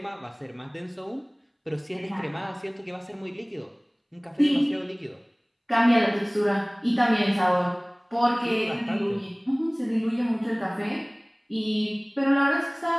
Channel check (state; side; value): identical; both; correlation 1.00